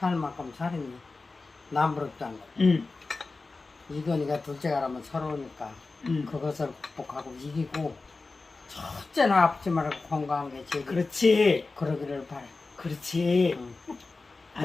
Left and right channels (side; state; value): right; quieter; 3.7 dB